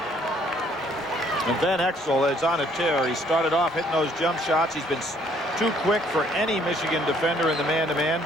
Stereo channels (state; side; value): normal; both; correlation 0.63